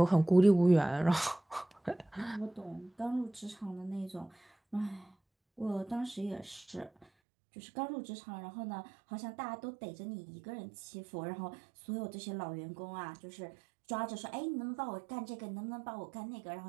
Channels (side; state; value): left; drops out; at 7.1 s